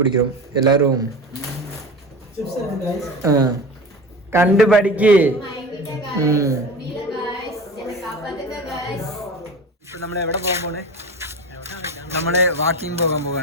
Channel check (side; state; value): both; normal; correlation 0.32